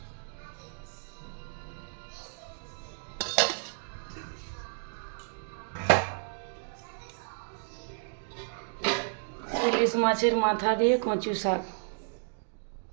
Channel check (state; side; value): silent; left; digital silence